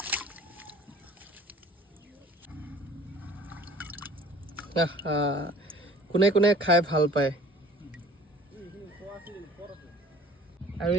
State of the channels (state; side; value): normal; both; correlation 0.49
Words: কোনে কোনে খাই ভাল পায় আৰু